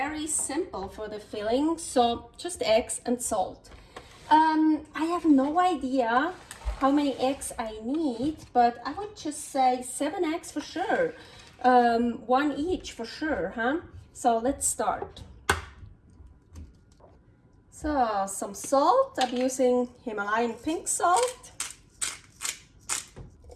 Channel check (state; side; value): identical; both; correlation 1.00